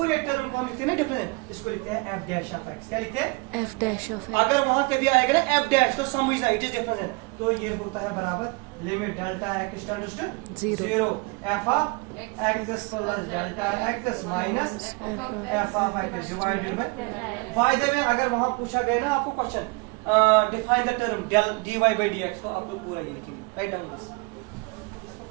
टर्म को हम लिखते हैं ना डिफरेंट, इसको लिखते हैं f dash of x। क्या लिखते हैं f dash of x। अगर वहां कभी आएगा ना f dash तो समझना इट इज डिफरेंट, तो ये होता है बराबर limit delta x tends to 0 f of x plus delta x minus f of x divided by the way. अगर वहां पूछा गया ना आपको question define the term del dy by dx को आप लोग पूरा ये लिखेंगे. Write down this.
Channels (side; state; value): left; quieter; 28.6 dB